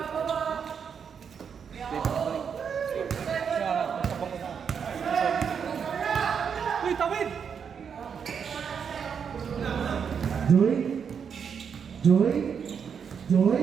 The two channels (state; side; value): quieter; left; 7.0 dB